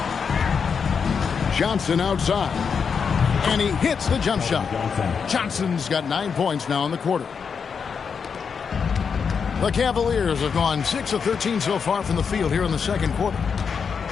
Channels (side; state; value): right; quieter; 6.2 dB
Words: Johnson outside. And he hits the jump shot. Johnson's got 9 points now in the quarter. The Cavaliers have gone 6 of 13 so far from the field here in the second quarter.